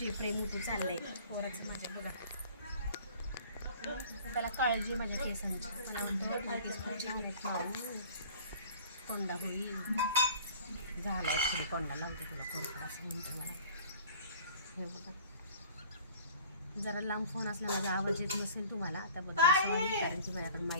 प्रेम होती चाललंय पोराचं माझ्या बघा. त्याला काळजी माझ्या केसांची. मला म्हणतो केस पुढचे होत माऊ कोंडा होईल झाला ॲक्च्युली कोंडा लावते तुला कोरफड असं म्हणतो मला. हे बघा जरा लांब फोन असला माझा आवाज येत नसेल तुम्हाला त्याबद्दल सॉरी कारण की माझ्याकडे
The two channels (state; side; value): inverted; both; correlation -0.47